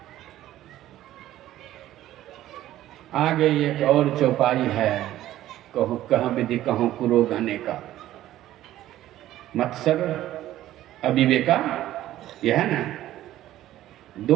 आगे एक और चौपाई है, कहो कहाँ विधि कहो कुरो गाने का। मत्सर अविवेका, यह है ना,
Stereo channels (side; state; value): left; quieter; 13.9 dB